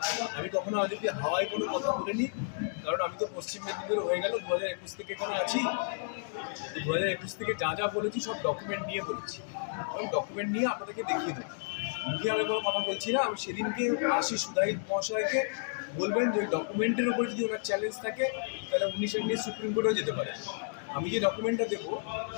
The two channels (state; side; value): silent; right; digital silence